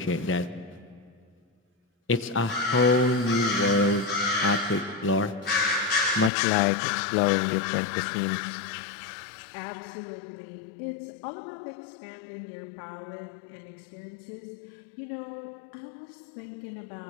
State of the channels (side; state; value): right; drops out; at 6.3 s